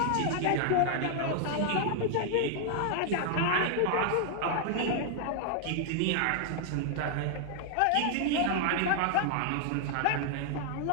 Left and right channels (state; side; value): different; both; correlation 0.00